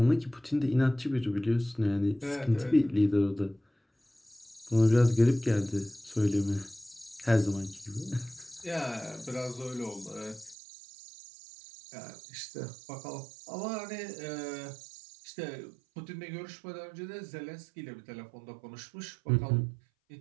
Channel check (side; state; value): left; drops out; at 10.6 s